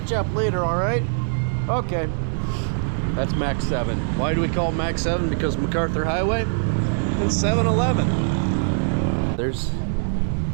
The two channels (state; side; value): silent; left; digital silence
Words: up later, all right? Okay. That's Mac 7. Why do we call it Mac 7? Because MacArthur Highway and 7-Eleven. There's